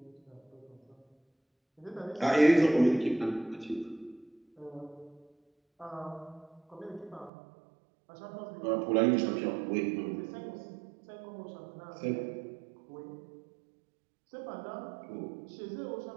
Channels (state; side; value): drops out; left; at 7.3 s